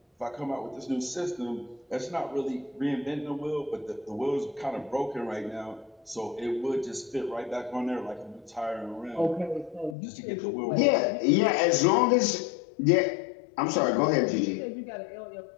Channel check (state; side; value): drops out; right; at 10.0 s